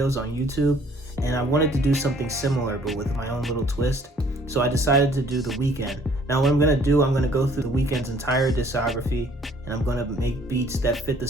on YouTube, and I wanted to do something similar but with my own little twist, so I decided to do the Weeknd. Now, what I'm going to do, I'm going to go through the Weeknd's entire discography, and I'm going to make beats that fit the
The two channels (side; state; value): both; normal; correlation 0.58